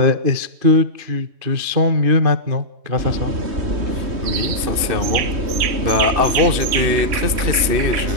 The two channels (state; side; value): late; left; 2.6 ms